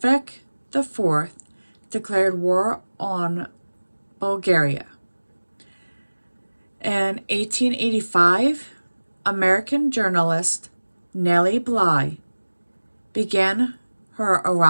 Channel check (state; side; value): inverted; both; correlation -1.00